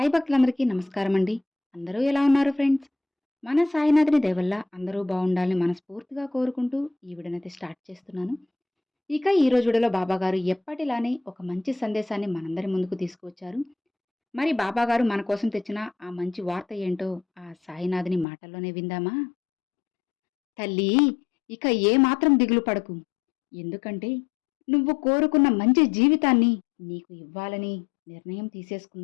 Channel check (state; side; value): drops out; right; at 18.2 s